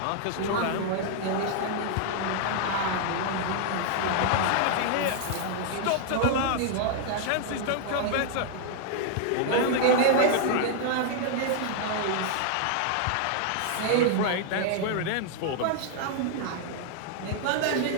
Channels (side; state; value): both; different; correlation 0.00